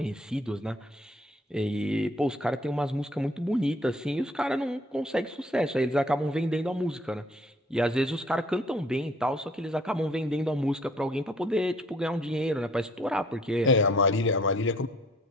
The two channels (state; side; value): normal; both; correlation 0.59